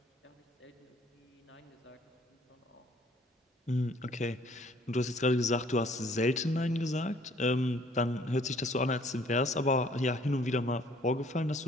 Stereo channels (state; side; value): normal; both; correlation 0.59